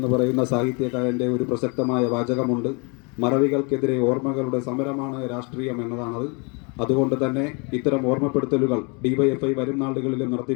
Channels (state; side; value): quieter; right; 32.3 dB